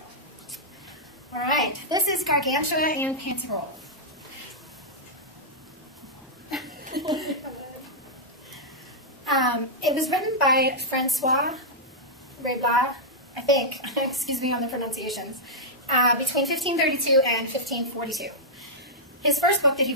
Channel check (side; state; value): both; normal; correlation -0.09